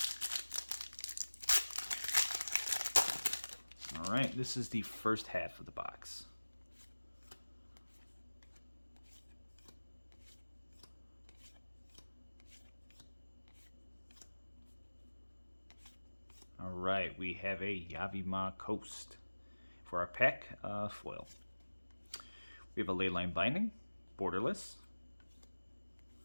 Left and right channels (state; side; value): inverted; both; correlation -1.00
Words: Alright, this is the first half of the box. Alright, we have a Yavimaya Coast. for our pack foil. We have a Leyline Binding, borderless.